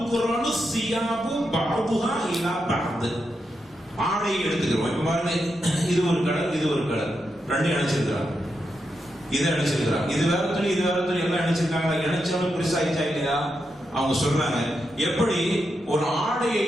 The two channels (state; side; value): normal; both; correlation 0.85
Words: சியாபு பஅதுஹா இலா பஅத். ஆடையை எடுத்துக்கிறோம். இப்ப பாருங்க, இது ஒரு கலர், இது ஒரு கலர், ரெண்டையும் இணைச்சிருக்கிறாங்க. இதை இணைச்சிருக்கிறாங்க, இது வேற துணி, இது வேற துணி, எல்லாம் இணைச்சிருக்காங்க. இணைச்சவங்க பெருசா ஆயிடுச்சா இல்லையா? அவங்க சொல்றாங்க, எப்படி ஒரு ஆடையை